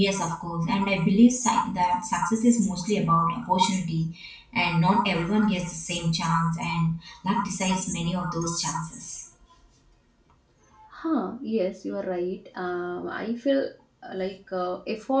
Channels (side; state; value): both; identical; correlation 1.00